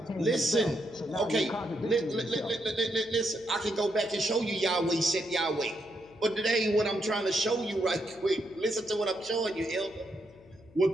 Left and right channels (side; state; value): left; noise; hum, 25 dB below the sound